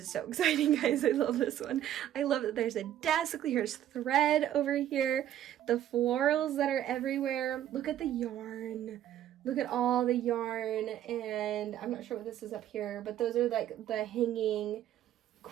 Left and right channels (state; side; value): quieter; left; 11.6 dB